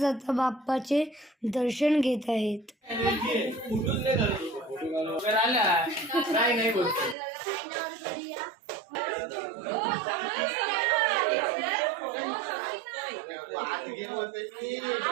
बाप्पाचे दर्शन घेत आहेत.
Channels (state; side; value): drops out; left; at 7.2 s